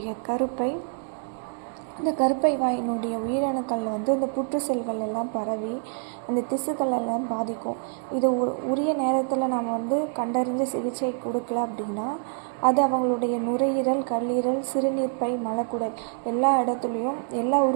இந்த கருப்பை வாயினுடைய உயிரணுக்கள் வந்து இந்த புற்று செல்கள் எல்லாம் பரவி அந்த திசுக்கள் எல்லாம் பாதிக்கும். இது உரிய நேரத்தில் நம்ம வந்து கண்டறிஞ்ச சிகிச்சை கொடுக்கல அப்படின்னா அது அவங்களுடைய நுரையீரல், கல்லீரல், சிறுநீர்ப்பை, மலக்குடல் எல்லா இடத்துலையும் எல்லா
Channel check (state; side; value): silent; left; 61 dB below the other